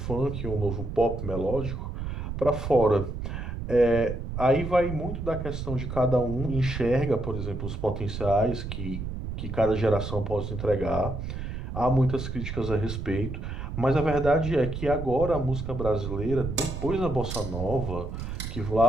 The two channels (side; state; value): right; noise; rumble, 6 dB below the sound